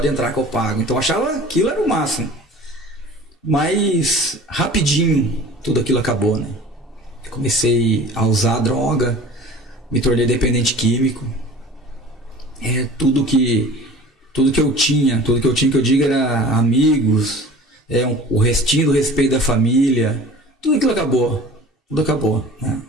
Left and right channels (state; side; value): normal; both; correlation 0.43